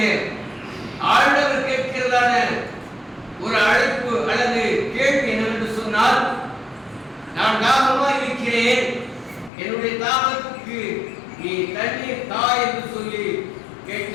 ஆண்டவர் கேட்கிறதான ஒரு அழைப்பு அல்லது கேள்வி என்னவென்று சொன்னால், நான் தாகமாக இருக்கிறேன், என்னுடைய தாகத்துக்கு நீ தண்ணீர் தா என்று சொல்லி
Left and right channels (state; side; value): drops out; right; at 9.5 s